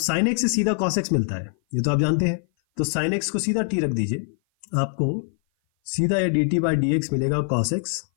एक्स से सीधा कॉस एक्स मिलता है, ये तो आप जानते हैं। तो साइन एक्स को सीधा टी रख दीजिए, आपको सीधा ये D T by D x मिलेगा कॉस एक्स,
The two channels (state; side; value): silent; right; 57 dB below the other